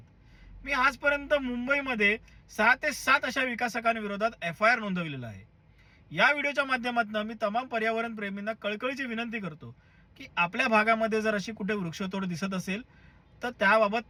मी आजपर्यंत मुंबईमध्ये 6 ते 7 अशा विकासकांविरोधात FIR नोंदविलेला आहे. या व्हिडिओच्या माध्यमातून मी तमाम पर्यावरण प्रेमींना कळकळीची विनंती करतो की आपल्या भागामध्ये जर अशी कुठे वृक्षतोड दिसत असेल तर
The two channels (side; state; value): both; identical; correlation 1.00